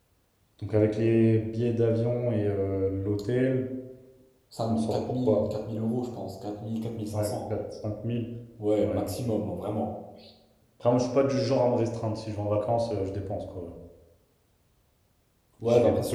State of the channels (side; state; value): both; identical; correlation 1.00